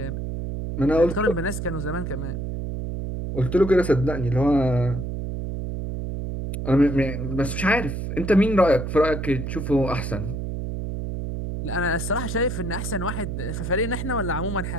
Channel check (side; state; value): right; noise; hum, 4 dB below the sound